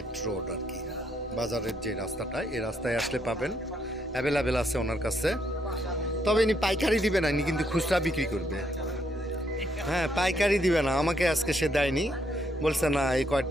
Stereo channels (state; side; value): normal; both; correlation 0.74